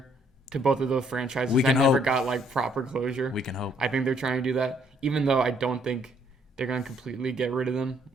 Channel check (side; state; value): both; normal; correlation 0.67